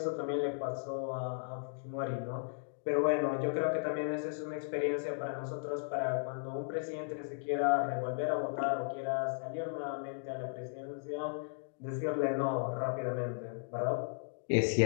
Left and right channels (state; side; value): silent; right; digital silence